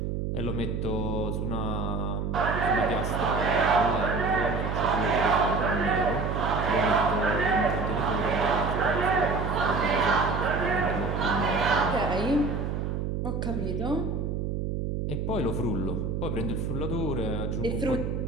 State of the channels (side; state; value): right; noise; hum, 2 dB below the sound